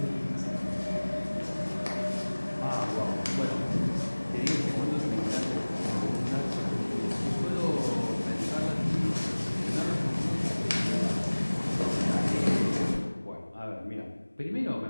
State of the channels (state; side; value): inverted; both; correlation -1.00